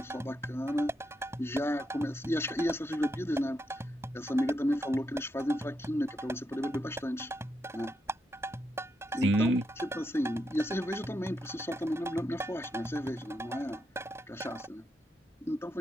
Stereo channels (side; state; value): both; normal; correlation 0.82